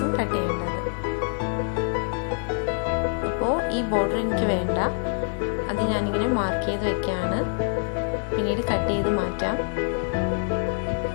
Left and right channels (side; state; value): right; silent; digital silence